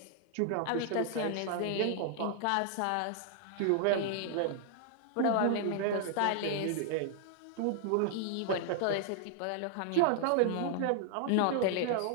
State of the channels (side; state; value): both; different; correlation 0.00